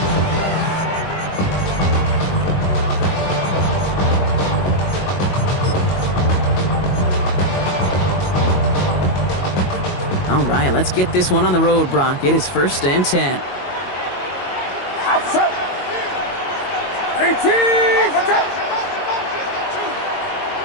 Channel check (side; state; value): right; late; 22 ms